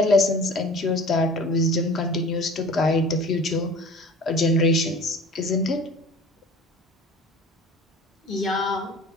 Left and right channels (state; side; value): normal; both; correlation 0.42